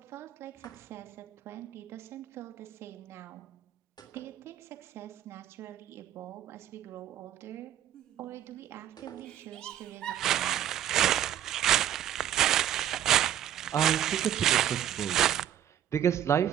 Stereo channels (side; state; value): left; quieter; 11.0 dB